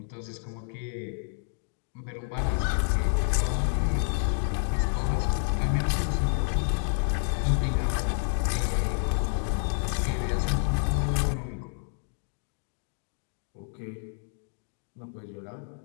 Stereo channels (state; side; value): silent; right; digital silence